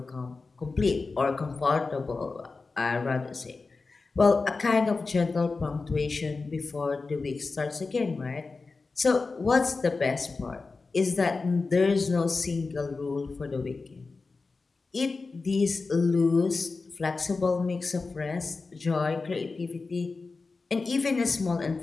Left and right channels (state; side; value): quieter; right; 4.0 dB